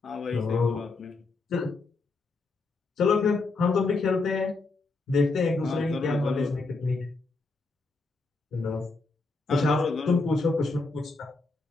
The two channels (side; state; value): right; quieter; 3.6 dB